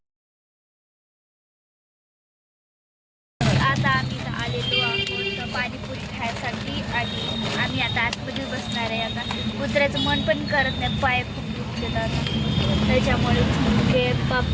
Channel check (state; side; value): identical; both; correlation 1.00